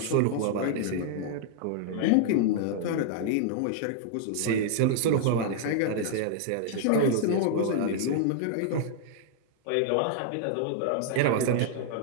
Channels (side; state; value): both; different; correlation -0.01